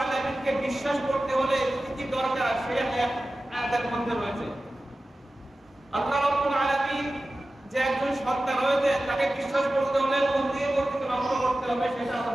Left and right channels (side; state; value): both; normal; correlation 0.95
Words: আলামিনকে বিশ্বাস করতে হলে কি কি দরকার সেই আয়াতের মধ্যে রয়েছে। আল্লাহ রাব্বুল আলামিন যে একজন সত্তা রয়েছে তাকে বিশ্বাস করতে হলে কোন দিকে লক্ষ্য করতে হবে সেটা আল্লাহ